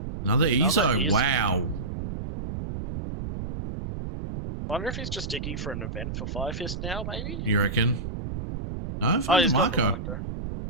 Another EZO. Wow. I wonder if he's just digging for an event for Fire Fist now, maybe? You reckon? No, Oh, for he's got the Marco. marker.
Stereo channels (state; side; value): noise; right; rumble, 6 dB below the sound